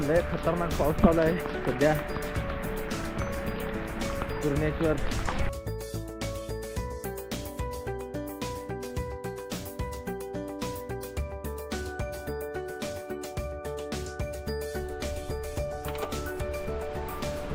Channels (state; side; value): identical; both; correlation 1.00